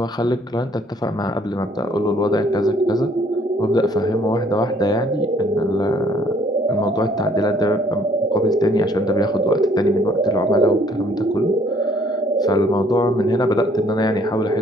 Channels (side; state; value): both; normal; correlation 0.62